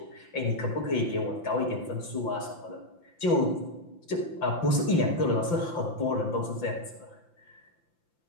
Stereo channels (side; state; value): right; late; 5.9 ms